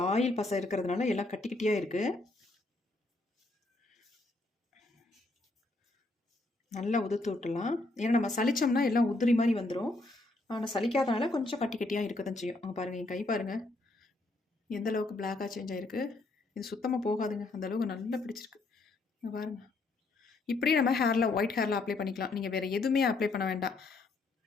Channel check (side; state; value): right; quieter; 3.1 dB